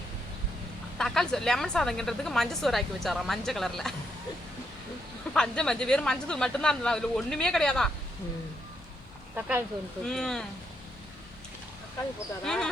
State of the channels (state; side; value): normal; both; correlation 0.78